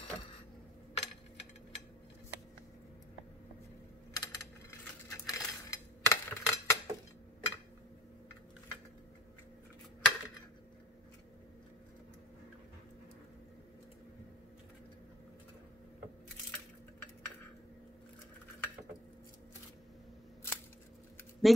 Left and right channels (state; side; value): normal; both; correlation 0.55